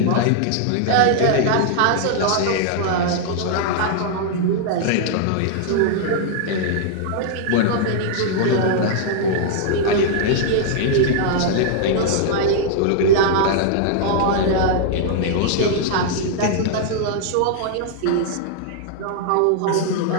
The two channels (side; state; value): both; different; correlation -0.01